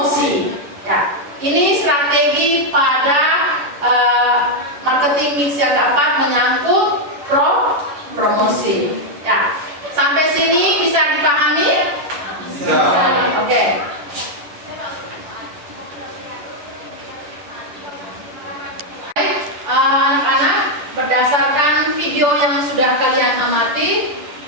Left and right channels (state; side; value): late; left; 11 ms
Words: Ya, ini strategi pada marketing mix yang keempat menyangkut promosi. Ya, sampai sini bisa dipahami? Bisa. Oke. Anak-anak, berdasarkan video yang sudah kalian amati,